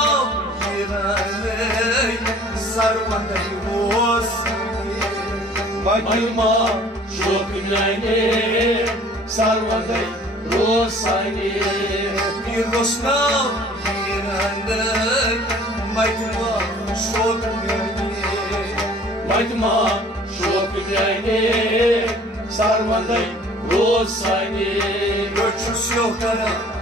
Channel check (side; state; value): both; normal; correlation 0.51